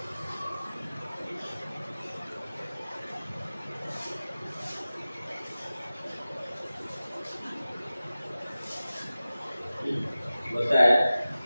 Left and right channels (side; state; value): both; inverted; correlation -0.96